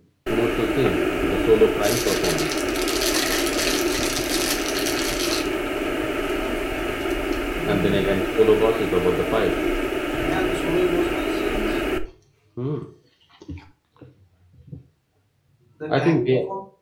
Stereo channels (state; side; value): identical; both; correlation 1.00